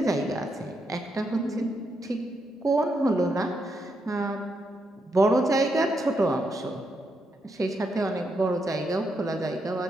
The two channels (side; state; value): both; normal; correlation 0.81